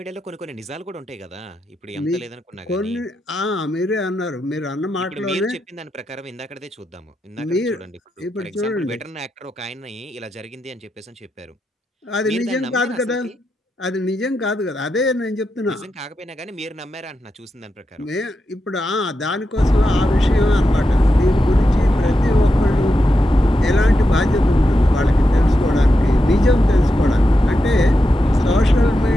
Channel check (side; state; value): both; normal; correlation 0.88